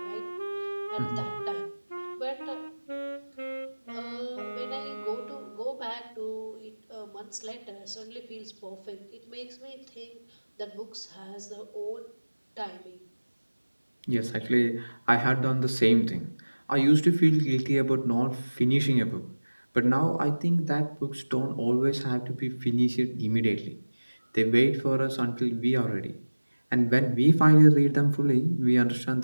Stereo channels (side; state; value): both; inverted; correlation -1.00